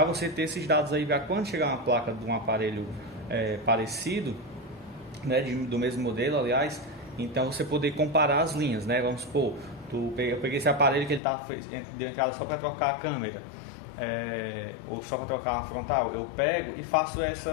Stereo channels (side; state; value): right; drops out; at 11.2 s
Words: você ter esses dados aí para quando chegar uma placa de um aparelho parecido, né? Do mesmo modelo, aliás, então você poder comparar as linhas, né? Vamos supor, eu peguei esse aparelho que ele deu entrada só para trocar a câmera, ou só para trocar a frontal, eu pego e faço